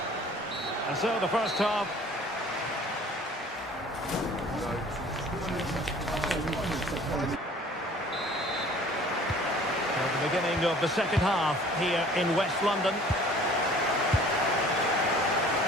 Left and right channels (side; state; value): both; normal; correlation 0.50